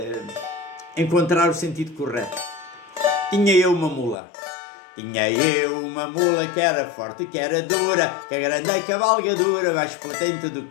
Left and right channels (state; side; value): drops out; right; at 4.2 s